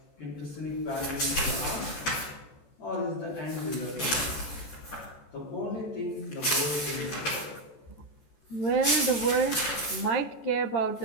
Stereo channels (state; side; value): late; right; 14 ms